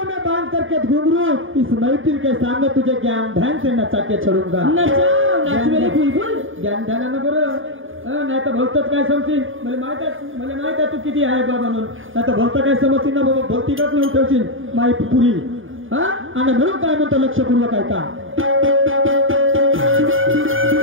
में बांध करके घुंघरू इस महफिल के सामने तुझे ज्ञान ध्यान से नचा के छोड़ूंगा. नाच मेरे बुलबुल. ज्ञान ध्यानानं बरं, नाही तर भलतच काय समजतील. मला माहित आहे तू किती आहे बा म्हणून. नाही तर भलत काय समजतील ना बाबा, भौतिकच नेऊन ठेवशील माई पुरी. आणि म्हणून काय म्हणतो लक्षपूर्वक ऐका.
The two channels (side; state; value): left; late; 0.58 ms